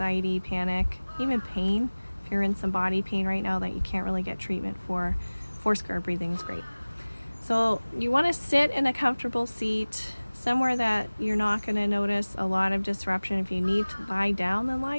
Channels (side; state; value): both; inverted; correlation -1.00